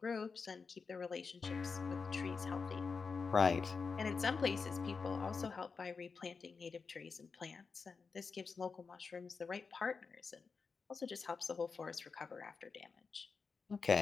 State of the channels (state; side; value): quieter; right; 5.0 dB